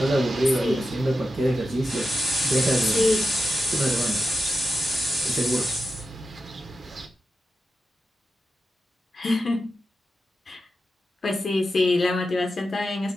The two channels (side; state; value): both; normal; correlation 0.90